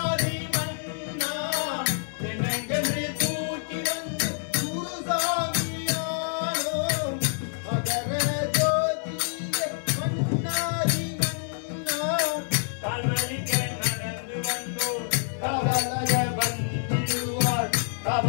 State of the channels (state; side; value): silent; right; 56 dB below the other